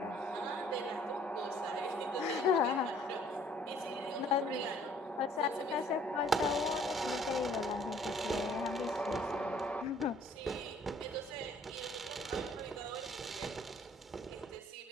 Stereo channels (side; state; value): both; normal; correlation 0.59